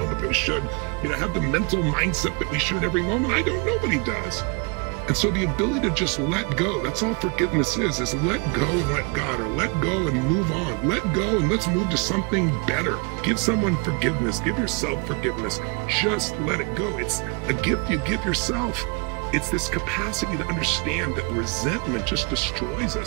that we should, have the mental mindset that we should every moment. I don't. Nobody does. And so the ability to just let go, that's all forgiveness is let go and let God, or let go and move on. Let go and let's move to something better. Give someone forgiveness. Give yourself forgiveness. Just let it go. It's a gift you give yourself. It's this capacity to understand that resentment just destroys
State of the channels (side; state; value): left; quieter; 32.5 dB